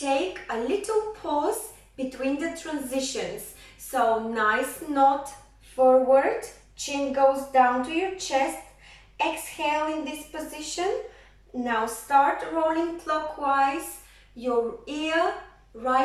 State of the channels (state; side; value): identical; both; correlation 1.00